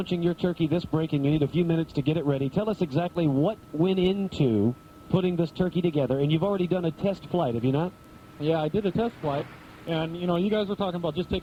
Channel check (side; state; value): both; identical; correlation 1.00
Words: your turkey this break, and you need a few minutes to get it ready. Tell us exactly what went into putting this turkey together, and you've already done a test flight, have you not? Yeah, I did a test flight, and, you guys were talking about just